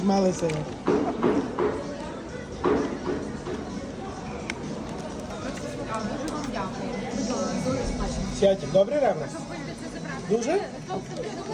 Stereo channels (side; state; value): both; identical; correlation 1.00